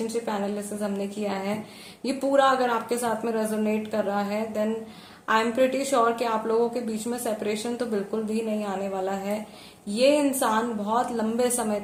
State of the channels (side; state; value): both; identical; correlation 1.00